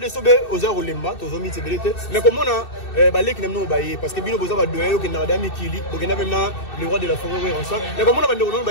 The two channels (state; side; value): late; right; 2.6 ms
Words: aux heures au lemba, aux hommes qui mais comme on a les qui n'aiment pas parce que bien vous avez donné au Canada Mikili, donc il y a même le roi de la forêt ensemble. Mais comme on a